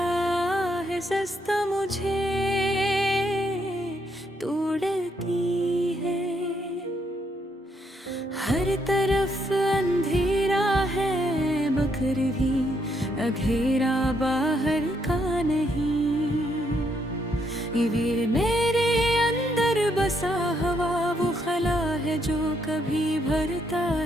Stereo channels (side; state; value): both; normal; correlation 0.75